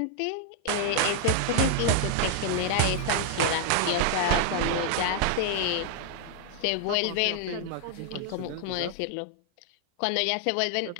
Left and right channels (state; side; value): different; both; correlation 0.00